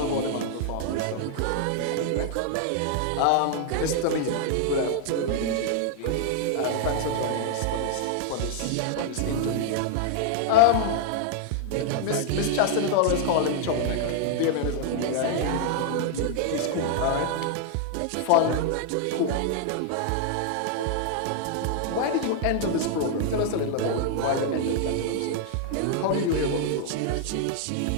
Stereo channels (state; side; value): different; both; correlation 0.00